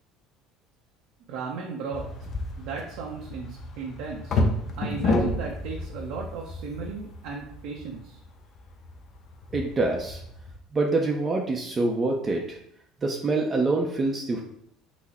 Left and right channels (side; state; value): both; normal; correlation 0.64